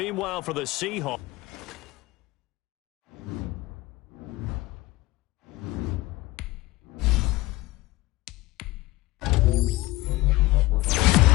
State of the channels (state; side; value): quieter; right; 19.3 dB